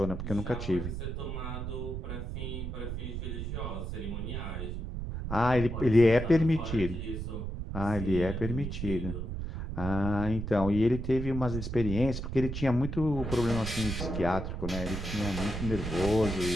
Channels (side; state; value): right; noise; rumble, 5 dB below the sound